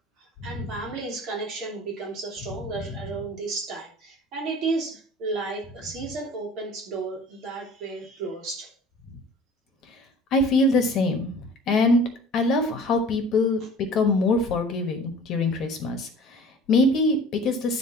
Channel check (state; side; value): normal; both; correlation 0.45